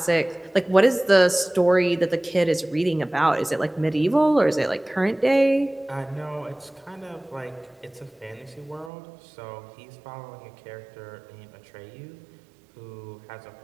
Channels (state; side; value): drops out; left; at 8.9 s